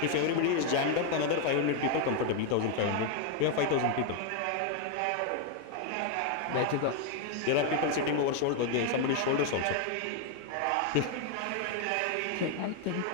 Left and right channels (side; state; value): both; different; correlation 0.01